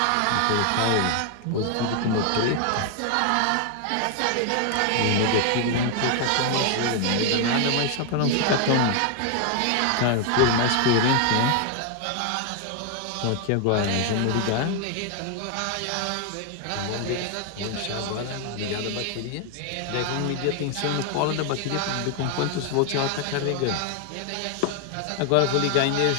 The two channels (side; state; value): both; different; correlation 0.00